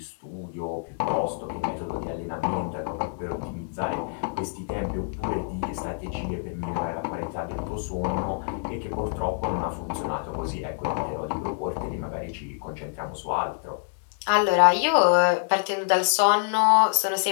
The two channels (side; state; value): right; silent; digital silence